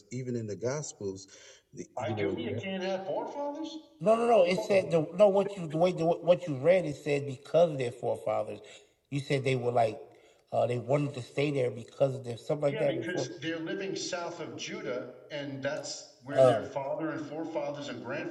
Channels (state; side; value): identical; both; correlation 1.00